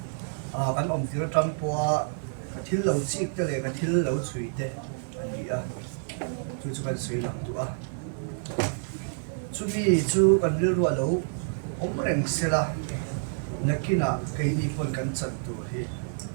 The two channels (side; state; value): left; silent; digital silence